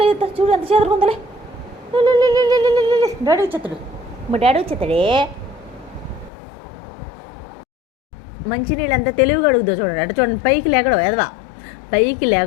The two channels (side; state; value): right; drops out; at 6.3 s